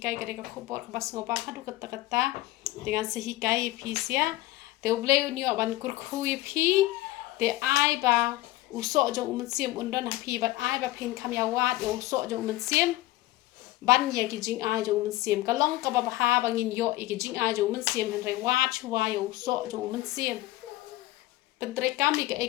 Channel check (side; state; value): right; quieter; 17.5 dB